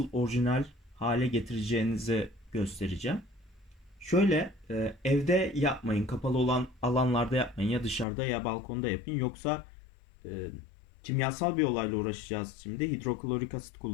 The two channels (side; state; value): right; drops out; at 8.1 s